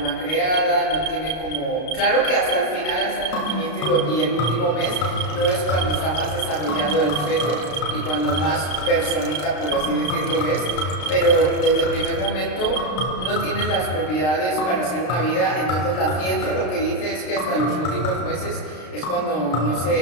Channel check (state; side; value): late; right; 33 ms